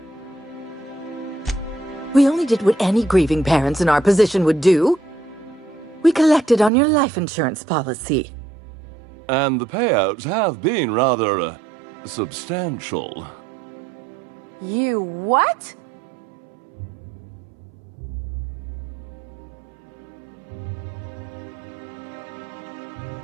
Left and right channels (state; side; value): drops out; left; at 6.7 s